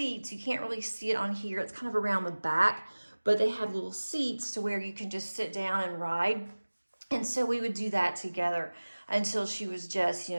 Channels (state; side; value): inverted; both; correlation -1.00